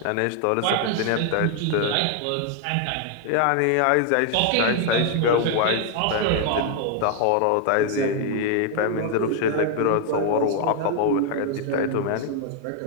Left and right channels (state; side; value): different; both; correlation 0.00